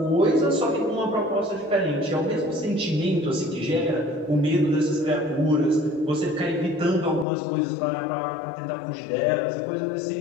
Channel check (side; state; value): right; drops out; at 7.2 s